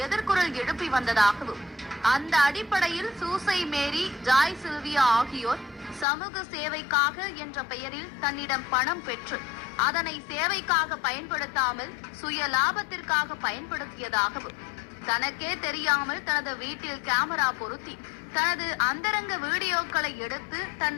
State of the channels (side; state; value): right; drops out; at 6.1 s